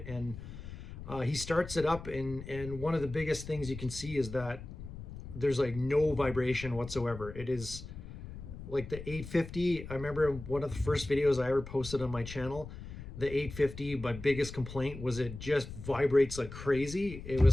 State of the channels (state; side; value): noise; left; rumble, 12 dB below the sound